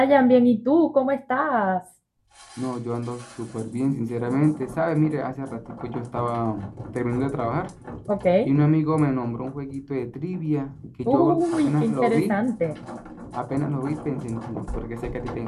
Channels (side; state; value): both; identical; correlation 1.00